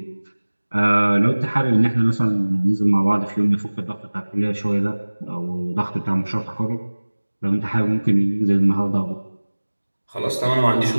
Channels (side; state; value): both; inverted; correlation -1.00